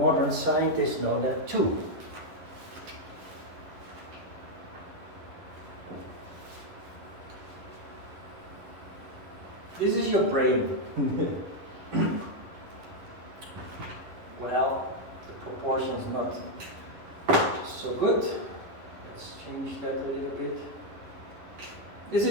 scientists know that too. This is your brain. Well, the proportion's not so good. Let's change that a little bit. This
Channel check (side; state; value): left; late; 11 ms